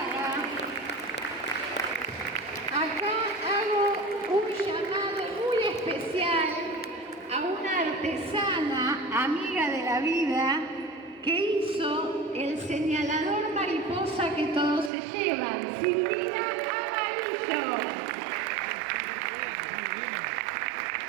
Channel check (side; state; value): left; drops out; at 14.9 s